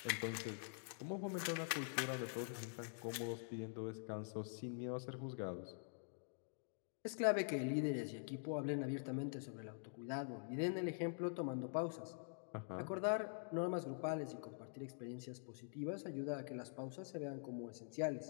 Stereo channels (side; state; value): right; silent; digital silence